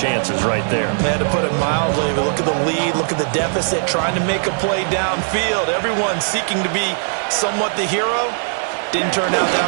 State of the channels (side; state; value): left; silent; digital silence